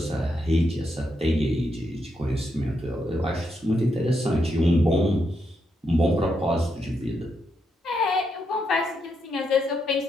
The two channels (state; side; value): normal; both; correlation 0.81